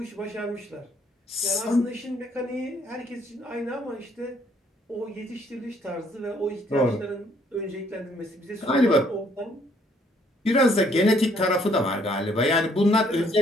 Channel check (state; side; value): normal; both; correlation 0.66